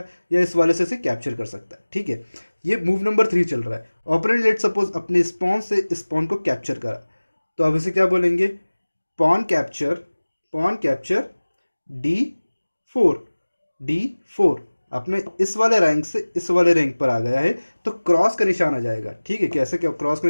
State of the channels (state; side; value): inverted; both; correlation -1.00